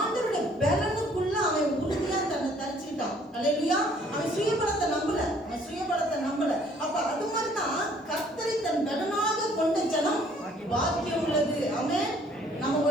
பலனுக்குள்ள அவன் உறுதியா தன்னை தரிச்சுக்கிட்டான். அல்லேலூயா. அவன் சுயபலத்தை நம்பல. அப்ப அது மாதிரிதான் கர்த்தரை தன் பலனாக கொண்ட ஜனம் பாக்கியம் உள்ளது. ஆமென்.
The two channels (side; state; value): both; normal; correlation 0.60